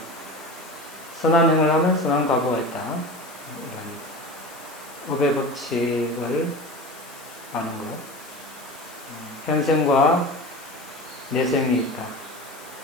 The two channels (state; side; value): noise; left; hiss, 19 dB below the sound